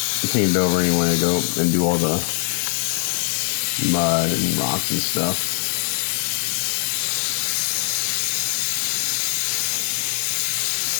painted over anyway. I go and do all the mud and rocks and stuff.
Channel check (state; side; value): silent; right; 64 dB below the other